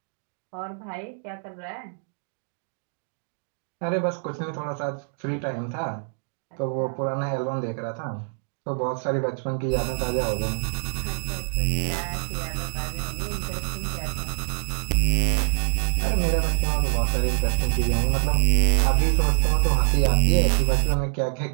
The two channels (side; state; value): left; silent; digital silence